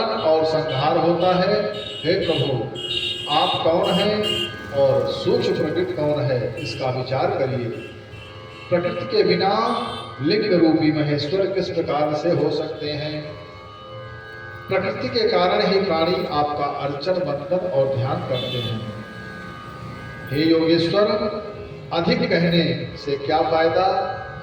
और संहार होता है। हे प्रभु, आप कौन हैं और सूक्ष्म प्रकृति कौन है, इसका विचार करिए। प्रकृति के बिना लिंग रूपी महेश्वर किस प्रकार से हो सकते हैं? प्रकृति के कारण ही प्राणी आपका अर्चन, वंदन और ध्यान करते हैं। हे योगेश्वर, अधिक कहने से क्या फायदा?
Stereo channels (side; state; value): both; identical; correlation 1.00